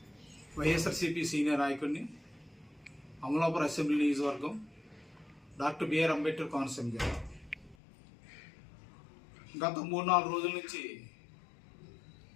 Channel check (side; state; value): right; drops out; at 7.8 s